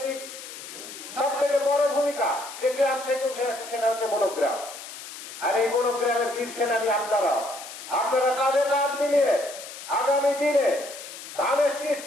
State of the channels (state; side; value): noise; left; hiss, 12 dB below the sound